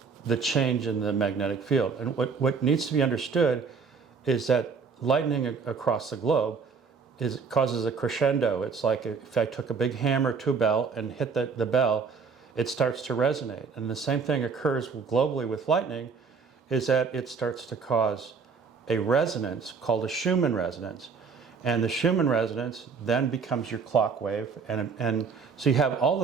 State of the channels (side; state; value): left; quieter; 5.4 dB